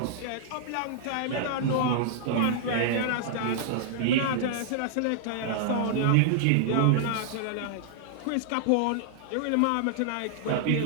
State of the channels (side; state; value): both; different; correlation -0.01